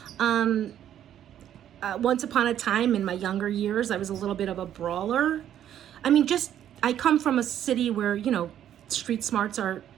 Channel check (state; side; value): quieter; left; 10.7 dB